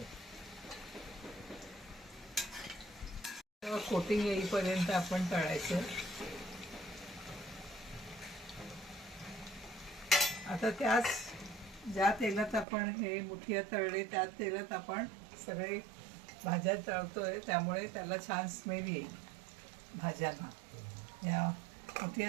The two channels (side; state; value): left; drops out; at 12.7 s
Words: कोटिंग येईपर्यंत आपण तळायचं. आता त्याच ज्या तेलात आपण हे मुठिया तळले त्या तेलात आपण सगळे भाज्या तळतोय, त्यामुळे त्याला छान स्मेल येईल भाज्यांना. या